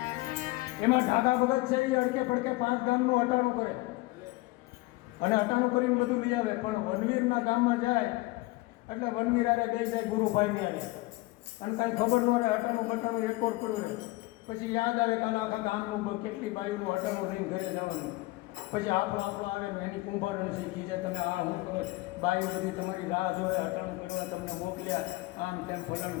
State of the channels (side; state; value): right; quieter; 21.1 dB